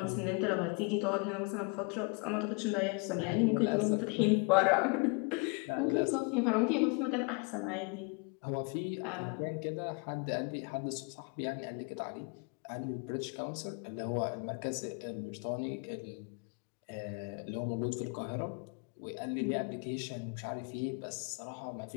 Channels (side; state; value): right; quieter; 32.2 dB